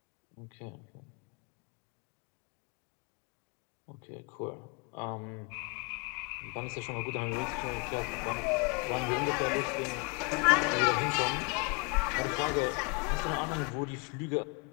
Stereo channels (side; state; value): right; quieter; 31.4 dB